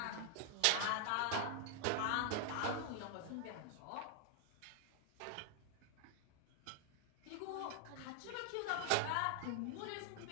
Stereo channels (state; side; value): different; both; correlation 0.00